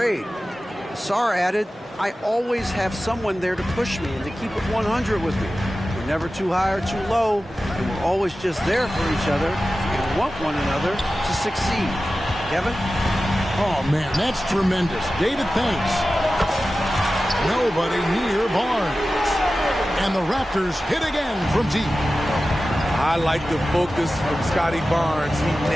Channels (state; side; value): normal; both; correlation 0.95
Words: Asar added, I always have someone there to push me and to keep it 100 with me. We're never too high or too low, and we're always just there for each other and want one another to succeed. Kevin? Oh, man, that's tremendous. David, thanks. Nobody near Barnes. And the Raptors hit again from deep. I like the focus from Scotty Barnes. He